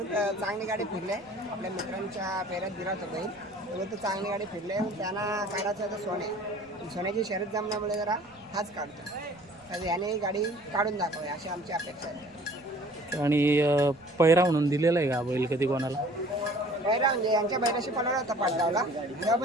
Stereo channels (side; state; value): right; noise; rumble, 30 dB below the sound